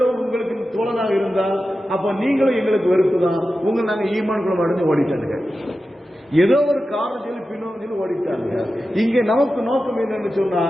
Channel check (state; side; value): normal; both; correlation 0.92